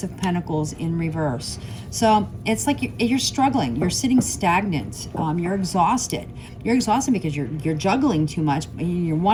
of Pentacles in reverse. So it's like you're struggling, you're sitting stagnant, you're exhausted. You're exhausted because you're juggling too much, you're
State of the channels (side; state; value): both; identical; correlation 1.00